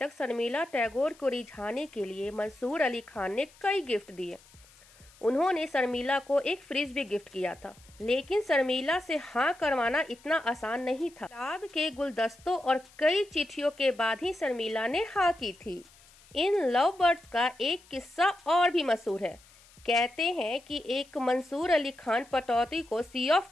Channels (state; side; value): noise; left; hiss, 26 dB below the sound